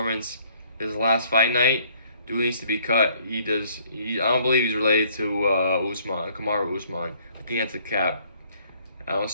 his last fight night. Dude needs to be cut. I don't believe he's related to Usman, Kamaru Usman. I think that's a cap. I don't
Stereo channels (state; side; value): inverted; both; correlation -0.62